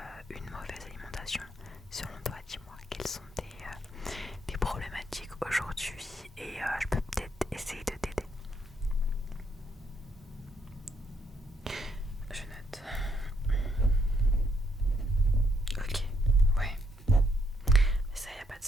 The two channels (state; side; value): normal; both; correlation 0.74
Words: une mauvaise alimentation? Selon toi, dis-moi, quelles sont tes problématiques aujourd'hui et je peux peut-être essayer de t'aider. Je note. Ok, ouais. Mais ça, y a pas de